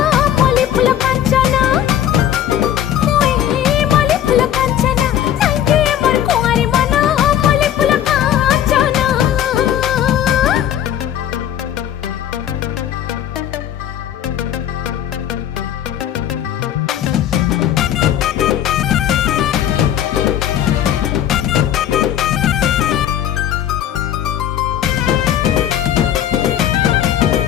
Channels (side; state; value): right; quieter; 10.7 dB